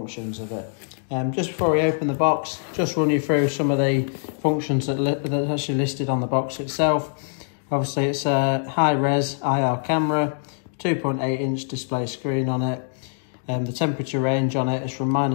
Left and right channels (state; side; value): silent; right; digital silence